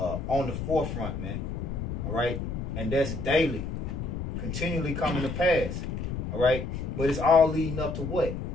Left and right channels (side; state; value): left; noise; rumble, 4 dB below the sound